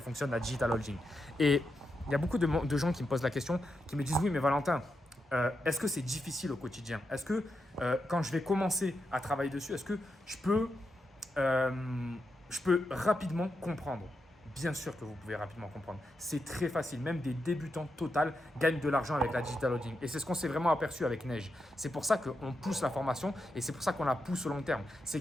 la digital holding. Et il y a beaucoup de gens qui me posent la question, qui me disent oui, mais Valentin, est-ce que c'est difficile au quotidien? Est-ce que quand je vais commencer à travailler dessus, est-ce que je peux rapidement comprendre? Bien sûr que vous pouvez rapidement comprendre. C'est très facile. Même des débutants total gagnent de l'argent avec la digital holding. Et c'est ce qu'on s'est vraiment aperçu avec Neige. C'est pour ça qu'on pousse la formation et c'est pour ça qu'on la pousse au long terme. C'est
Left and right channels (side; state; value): both; normal; correlation 0.86